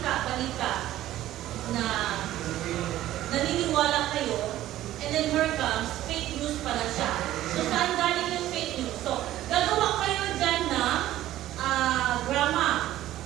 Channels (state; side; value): quieter; left; 14.0 dB